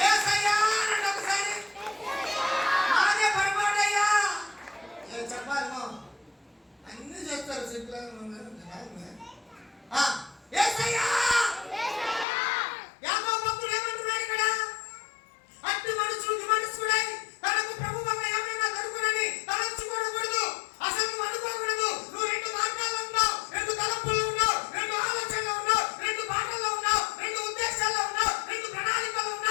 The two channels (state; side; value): drops out; right; at 12.2 s